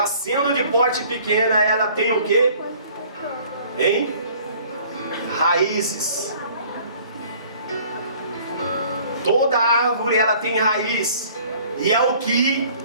sendo de porte pequena, ela tem o quê? Hein? Raízes. Toda árvore, ela tem raiz. E é o que,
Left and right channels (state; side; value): inverted; both; correlation -0.53